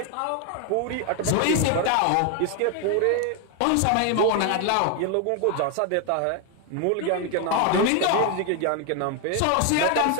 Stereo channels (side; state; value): both; different; correlation 0.01